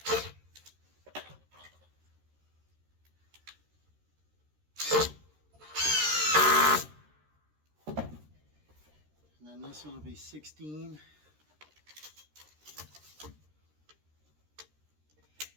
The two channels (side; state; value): left; late; 13 ms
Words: then this one will be 16.